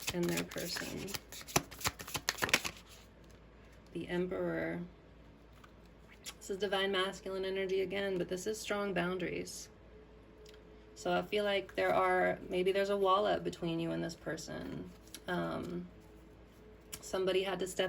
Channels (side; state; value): both; identical; correlation 1.00